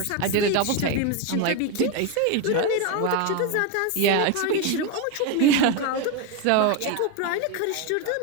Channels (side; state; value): both; different; correlation 0.02